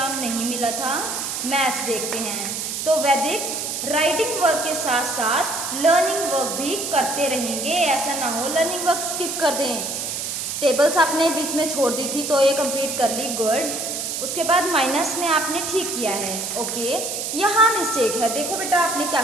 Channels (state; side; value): noise; right; hiss, 3 dB below the sound